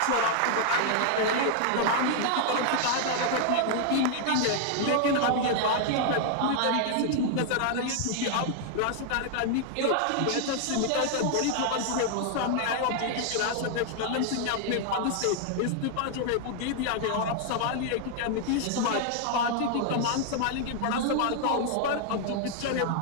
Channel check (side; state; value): both; different; correlation 0.00